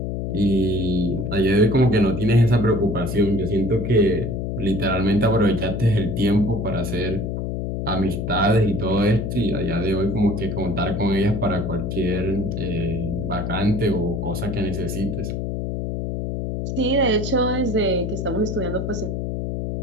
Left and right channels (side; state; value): left; noise; hum, 3 dB below the sound